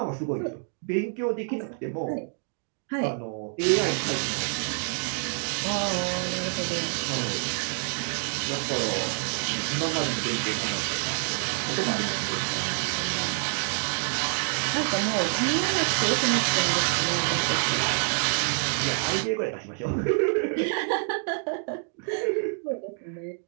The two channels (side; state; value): left; silent; 60 dB below the other